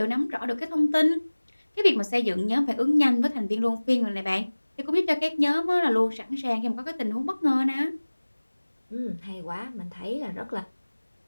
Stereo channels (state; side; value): inverted; both; correlation -1.00